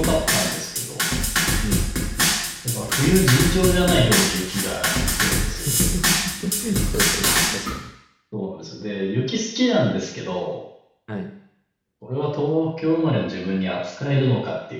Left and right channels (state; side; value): identical; both; correlation 1.00